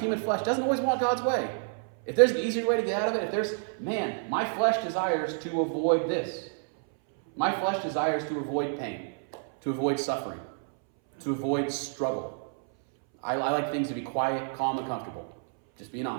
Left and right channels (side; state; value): left; silent; 59 dB below the other